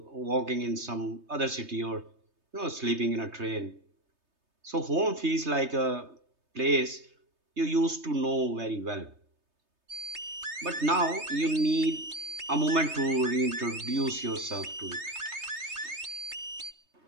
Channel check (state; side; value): late; left; 3.3 ms